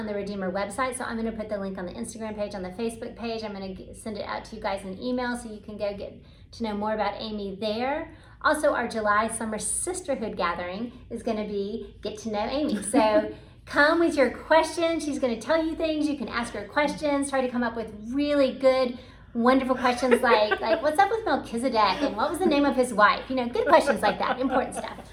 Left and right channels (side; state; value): both; identical; correlation 1.00